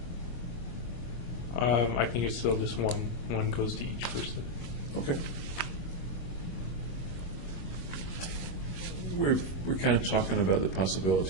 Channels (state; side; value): late; right; 23 ms